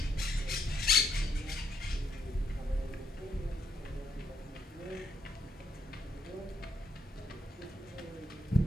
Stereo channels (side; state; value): both; normal; correlation 0.75